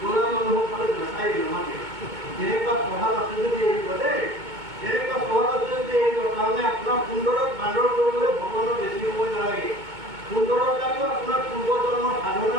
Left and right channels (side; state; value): left; late; 2.2 ms